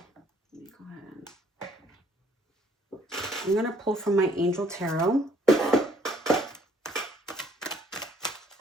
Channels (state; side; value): normal; both; correlation 0.63